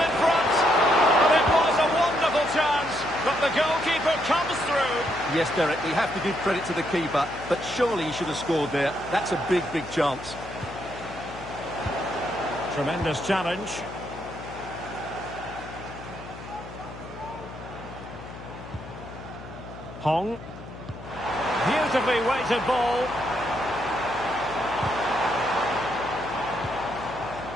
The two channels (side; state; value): left; noise; hum, 14 dB below the sound